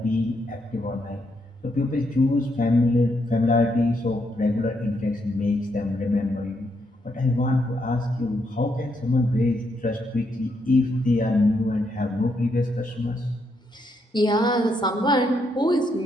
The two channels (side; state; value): both; normal; correlation 0.77